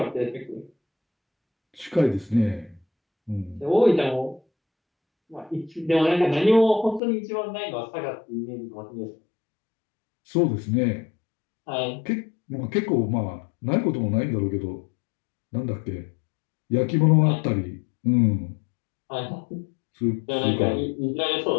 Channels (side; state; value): right; drops out; at 7.0 s